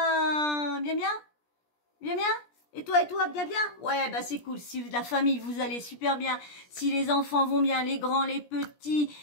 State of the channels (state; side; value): late; right; 17 ms